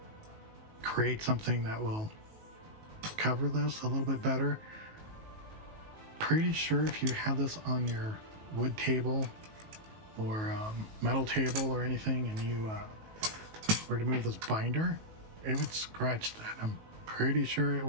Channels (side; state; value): left; late; 19 ms